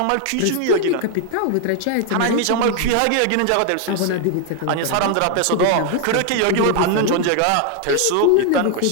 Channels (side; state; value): both; different; correlation 0.00